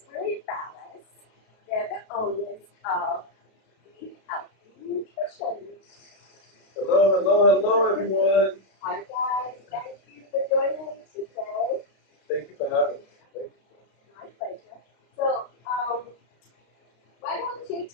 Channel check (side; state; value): right; late; 32 ms